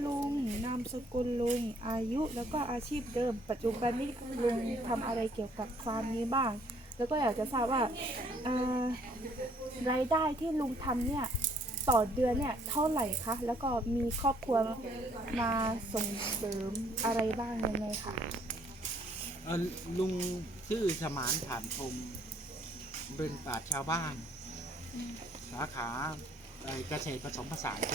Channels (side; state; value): both; normal; correlation 0.63